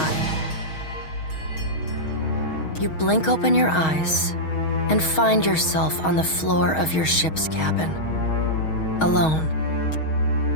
You blink open your eyes and find yourself on the floor of your ship's cabin, alone.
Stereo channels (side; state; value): right; late; 6.3 ms